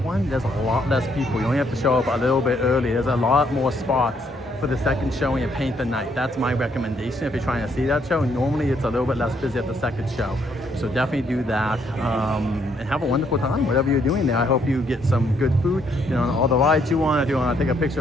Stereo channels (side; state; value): both; normal; correlation 0.71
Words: one. There's a lot less people. You only have to show up a little bit early. There's a lot more spots for the second showing of Paint the Night. That's my recommendation if you're trying to see that show. Normally it's a little bit less busy at the second show. So definitely do that and have a wonderful time, whatever you're doing there. I hope you get some good food, you know, on all the rides you want. If you want to take a picture